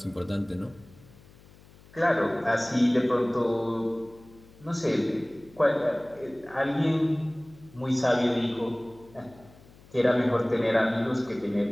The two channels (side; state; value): left; noise; hum, 25 dB below the sound